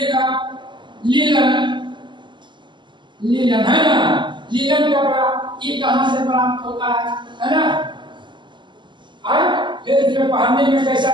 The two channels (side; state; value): left; late; 0.22 ms